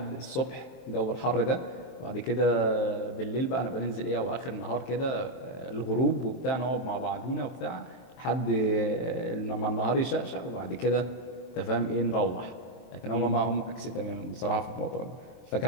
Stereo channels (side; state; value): right; late; 23 ms